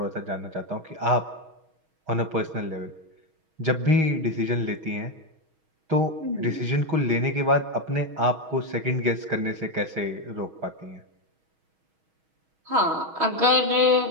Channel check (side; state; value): left; late; 6.3 ms